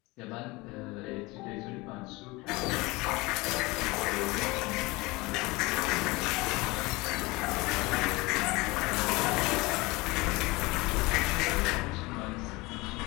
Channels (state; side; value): quieter; right; 23.1 dB